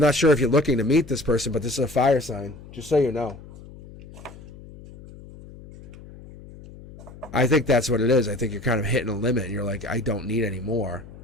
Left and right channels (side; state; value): left; noise; hum, 18 dB below the sound